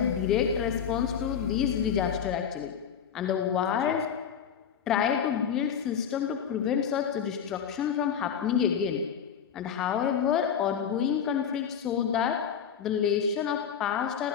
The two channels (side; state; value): right; quieter; 7.9 dB